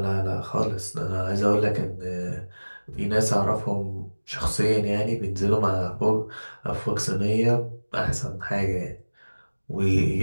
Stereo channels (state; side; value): inverted; both; correlation -1.00